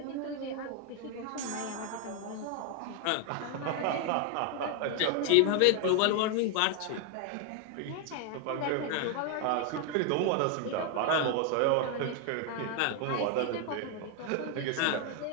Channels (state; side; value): different; both; correlation 0.01